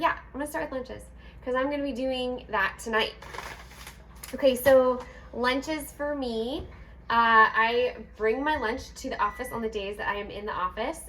start with lunches because I'm gonna be doing that tonight. Okay, so lunches for me, I bring my lunch to the office on the days that I am in the office,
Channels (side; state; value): both; identical; correlation 1.00